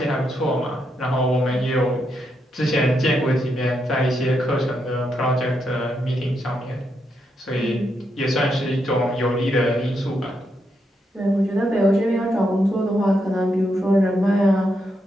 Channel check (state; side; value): normal; both; correlation 0.81